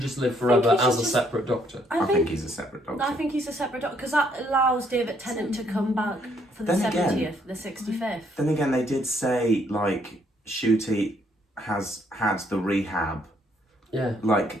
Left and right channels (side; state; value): both; normal; correlation 0.69